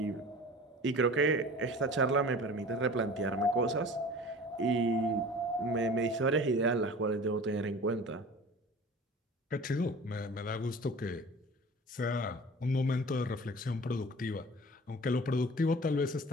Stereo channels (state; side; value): normal; both; correlation 0.41